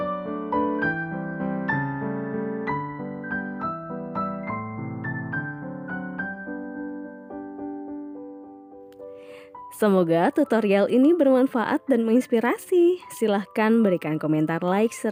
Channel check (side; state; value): both; identical; correlation 1.00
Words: Semoga tutorial ini bermanfaat dan menginspirasi. Silahkan berikan komentar like